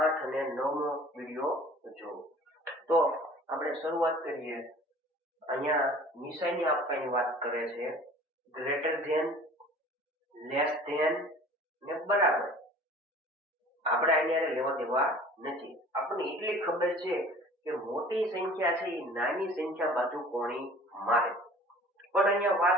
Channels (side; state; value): both; normal; correlation 0.46